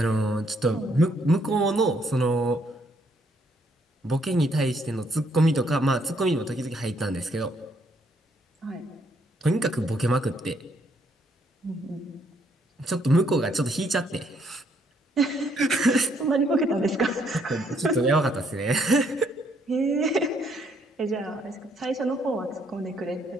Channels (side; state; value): both; normal; correlation 0.70